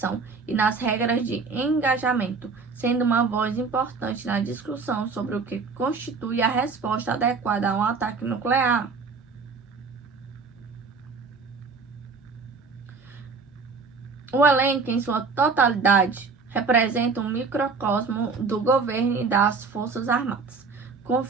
e nas regras de engajamento, sendo uma voz importante na discussão sobre o que constitui a resposta adequada a um ataque nuclear. O elenco, em sua totalidade, representa um microcosmo do governo e das Forças Armadas,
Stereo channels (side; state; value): left; quieter; 4.7 dB